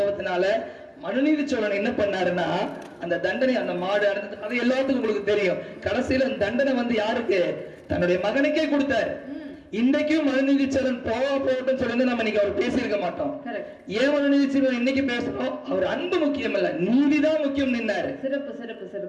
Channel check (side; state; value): both; identical; correlation 1.00